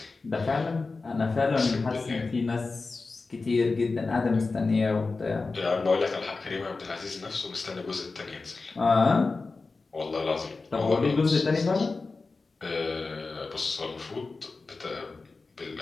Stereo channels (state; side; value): quieter; right; 3.9 dB